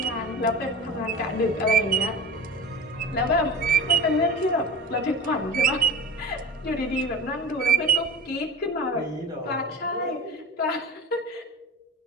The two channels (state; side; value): normal; both; correlation 0.33